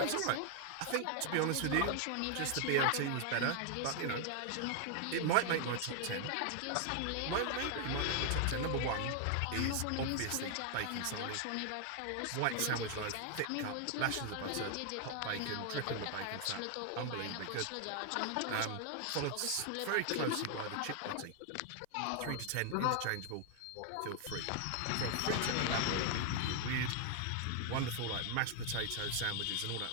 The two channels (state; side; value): different; both; correlation 0.00